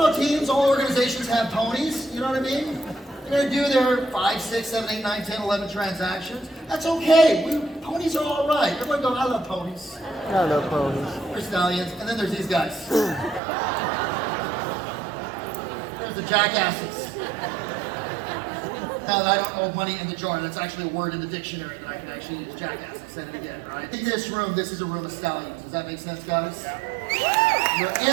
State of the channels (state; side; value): drops out; left; at 13.4 s